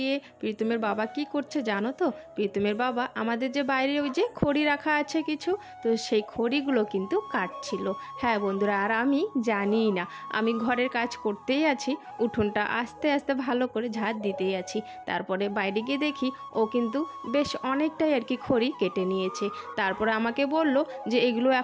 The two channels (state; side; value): identical; both; correlation 1.00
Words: প্রীতমের বাবা কি করছে জানো তো? প্রীতমের বাবা আমাদের যে বাইরে ওই যে খড়ি রাখা আছে কিছু, তো সেই খড়িগুলো কিন্তু কাটছিল। হ্যাঁ বন্ধুরা, আর আমি জানিই না, আমি ঘরের কাজ করতেই আছি, উঠোনটা আস্তে আস্তে ভালো করে ঝাড় দিতেই আছি। তারপরে বাইরে গিয়ে দেখি ও কিন্তু বেশ অনেকটাই আর কি খড়ি কেটে নিয়েছে। তারপরে আমাকে বলল যে এগুলো